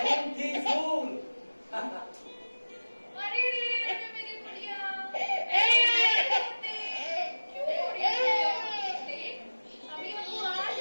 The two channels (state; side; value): inverted; both; correlation -1.00